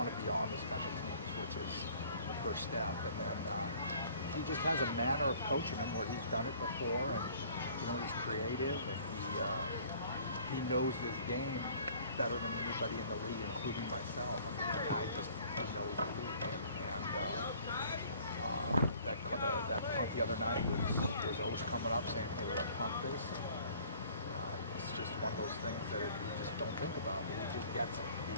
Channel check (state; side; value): inverted; both; correlation -0.53